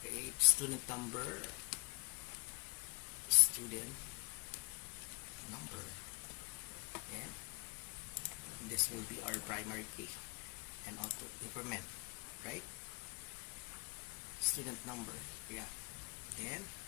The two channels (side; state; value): right; quieter; 34.4 dB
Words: create student number, and this will be our primary key and auto increment, right? Student number, yeah. Then